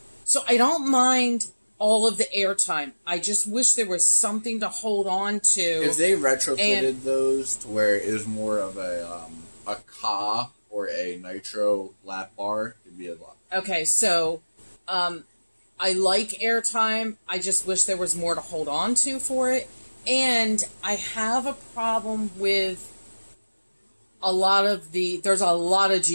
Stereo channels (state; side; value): inverted; both; correlation -1.00